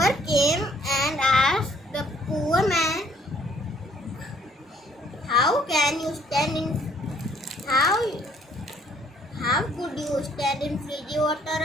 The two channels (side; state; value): both; normal; correlation 0.63